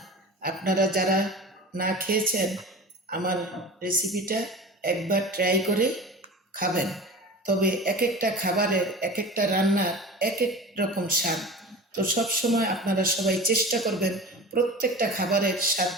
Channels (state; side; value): normal; both; correlation 0.34